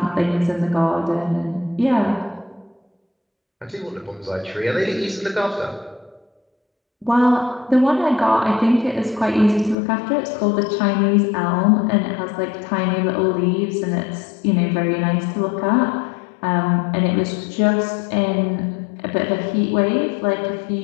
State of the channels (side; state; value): right; drops out; at 9.8 s